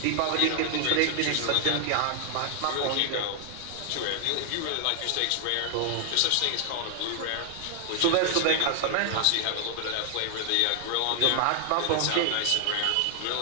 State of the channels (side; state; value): both; different; correlation 0.00